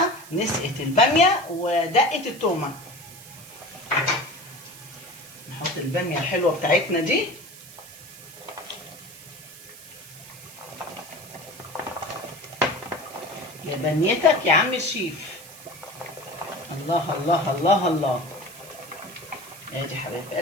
نسقط الباميه ودقه التومه. نحط الباميه الحلوه بتاعتنا دي. يا بنيتك يا عم الشيف. الله الله الله الله. ادي حبايب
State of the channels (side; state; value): right; noise; hiss, 17 dB below the sound